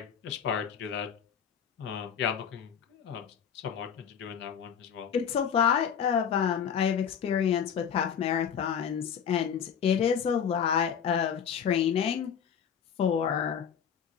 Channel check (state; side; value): quieter; right; 7.8 dB